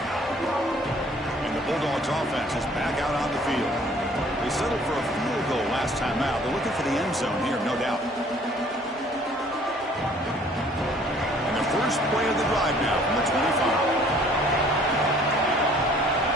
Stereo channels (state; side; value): normal; both; correlation 0.56